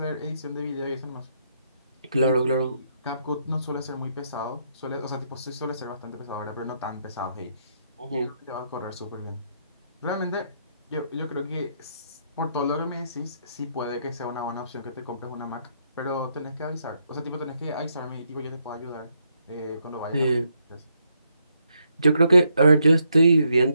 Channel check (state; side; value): inverted; both; correlation -0.77